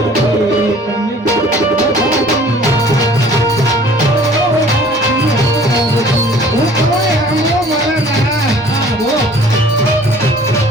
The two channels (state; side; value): normal; both; correlation 0.51